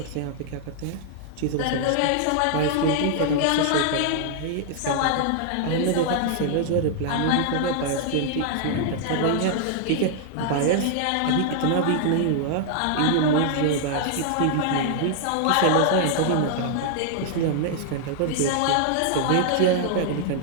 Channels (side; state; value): both; different; correlation -0.01